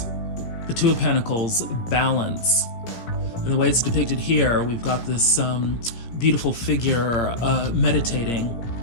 the Two of Pentacles, balance. And the way it's depicted here, we've got this beautiful figure meditating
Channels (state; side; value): late; right; 17 ms